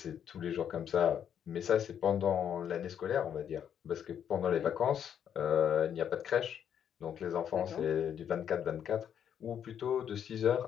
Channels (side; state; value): right; quieter; 8.9 dB